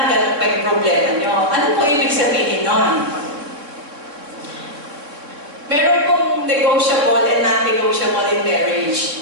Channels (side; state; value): left; late; 3.6 ms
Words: ganun pa yung problema nyo. Ano po ibig sabihin nun? Meron pong negotiable and non-negotiable in